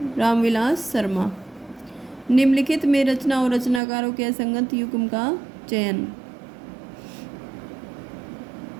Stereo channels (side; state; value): left; drops out; at 3.8 s